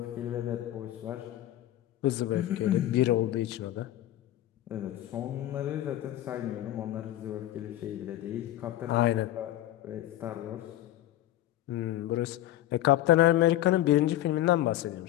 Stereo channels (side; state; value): right; quieter; 14.0 dB